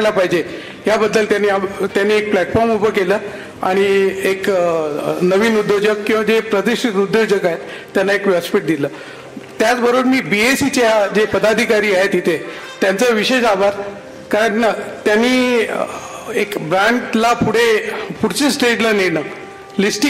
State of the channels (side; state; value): both; identical; correlation 1.00